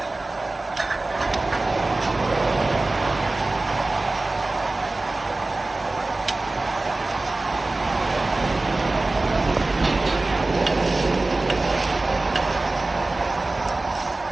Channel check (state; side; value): quieter; left; 3.1 dB